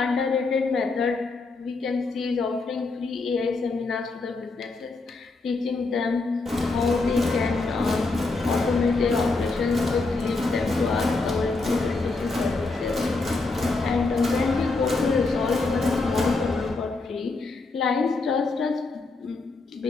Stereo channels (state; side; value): quieter; right; 3.6 dB